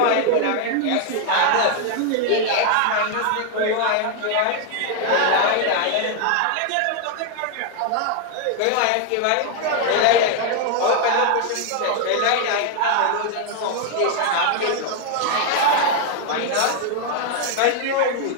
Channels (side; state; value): both; different; correlation 0.00